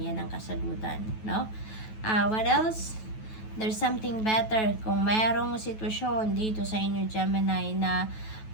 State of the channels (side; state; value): right; late; 9.2 ms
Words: yan ng kasagutan. No? What else? There's something better. Kung merong sitwasyon dito sa inyo, Gemini, na